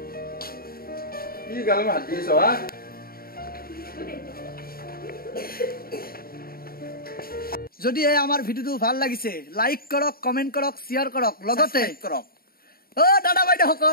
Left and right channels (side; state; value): right; late; 0.43 ms